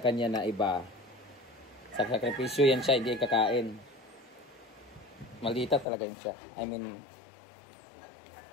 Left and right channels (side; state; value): right; drops out; at 5.9 s